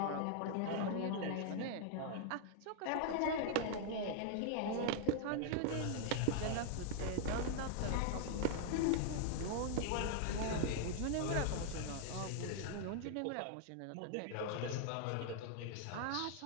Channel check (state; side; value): different; both; correlation 0.00